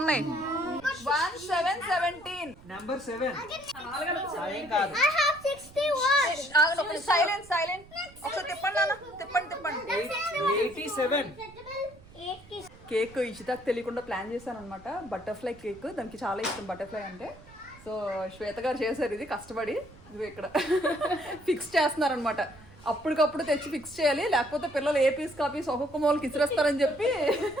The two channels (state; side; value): noise; right; rumble, 22 dB below the sound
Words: ఉన్నాయి. 1717. నంబర్ 7. ఏం కాదు. Silent silent. ఒకసారి తిప్పండి నాన్న, తిప్పండి 87. కేక్ ఇషితాకు తెలియకుండా ప్లాన్ చేశాను అనమాట. బటర్ఫ్లై కేక్, దానికి చాలా ఇష్టం బటర్ఫ్లై అంటే. సో శ్వేత గారు చేశారు ఇది కష్టపడి. ఇది ఇక్కడ ఫిక్స్ చేస్తున్నారనమాట. అప్పటికప్పుడు తెచ్చి ఫిక్స్ చేయాలి, లేకపోతే పిల్లలు ఏ పీస్ కాపీస్ ఒక్కొక్క మూలకి ఇసిరేస్తారని చెప్పి